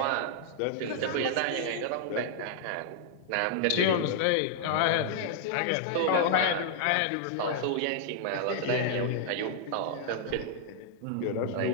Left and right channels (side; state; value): both; different; correlation -0.01